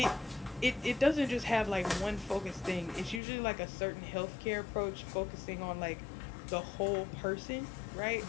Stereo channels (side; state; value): right; drops out; at 3.2 s